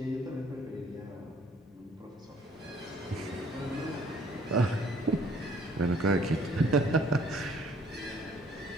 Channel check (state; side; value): normal; both; correlation 0.60